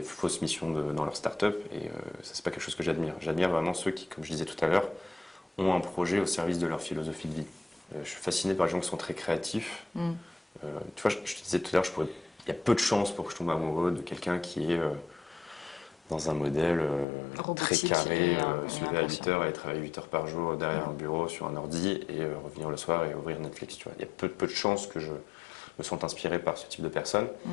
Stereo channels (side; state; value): right; drops out; at 17.1 s